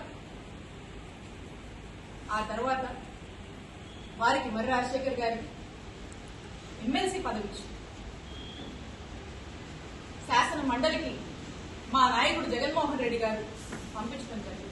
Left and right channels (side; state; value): both; identical; correlation 1.00